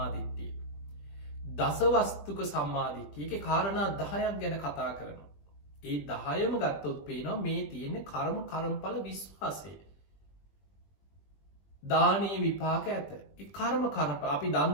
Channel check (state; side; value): late; right; 20 ms